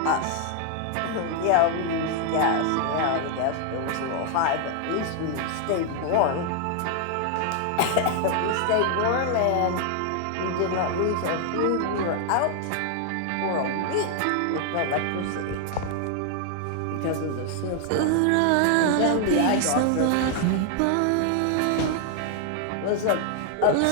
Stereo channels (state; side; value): different; both; correlation 0.00